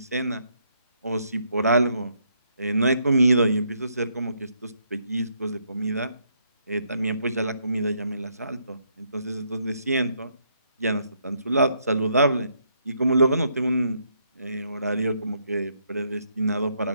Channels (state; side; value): inverted; both; correlation -0.74